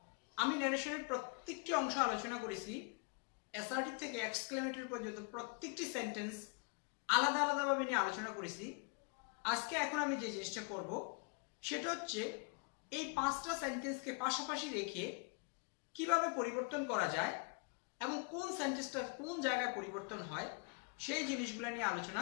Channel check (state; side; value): quieter; right; 34.8 dB